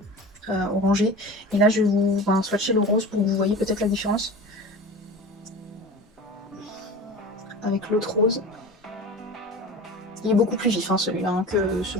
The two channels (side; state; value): both; normal; correlation 0.34